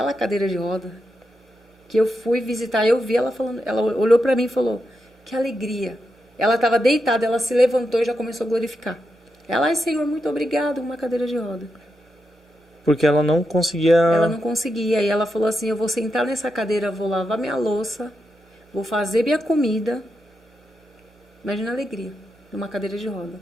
cadeira de roda que eu fui visitar, eu vi ela falando, ela olhou para mim e falou, que alegria. Ela estava deitada, ela se levantou e já começou a glorificar. Ela, ai Senhor, muito obrigado, uma cadeira de roda. Porque ela não conseguia... Ela não conseguia, e ela falou assim, eu vou sentar nessa cadeira, vou lavar minha louça, vou fazer minha comida. Imagina a alegria, numa cadeira de roda.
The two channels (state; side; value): normal; both; correlation 0.86